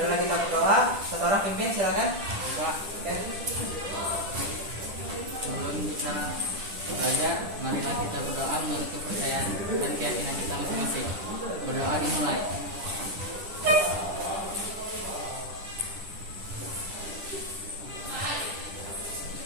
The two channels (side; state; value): left; late; 10 ms